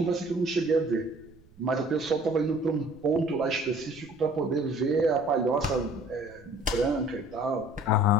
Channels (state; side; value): noise; right; rumble, 26 dB below the sound